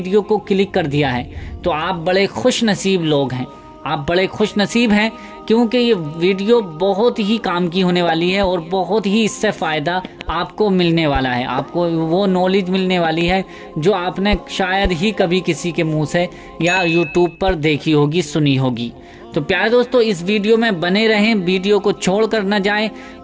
को क्लिक कर दिया है तो आप बड़े खुश नसीब लोग हैं, आप बड़े खुश नसीब हैं, क्योंकि ये वीडियो बहुत ही काम की होने वाली है और बहुत ही इससे फ़ायदा आपको मिलने वाला है। आपको वो नॉलेज मिलने वाली है जो आपने शायद ही कभी किसी के मुंह से या यूट्यूब पर देखी होगी, सुनी होगी। तो प्यारे दोस्तों, इस वीडियो में बने रहें, वीडियो को छोड़ कर न जाएं।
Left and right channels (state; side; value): identical; both; correlation 1.00